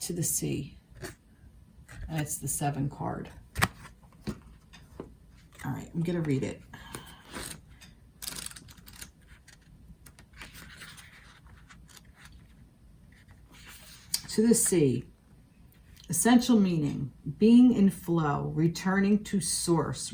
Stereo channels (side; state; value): both; identical; correlation 1.00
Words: To the sea. And it's the 7 card. All right, I'm going to read it. To the sea. Essential meaning, being in flow, returning to source,